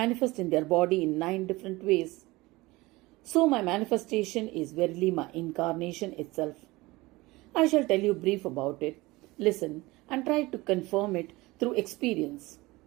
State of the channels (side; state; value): left; quieter; 21.2 dB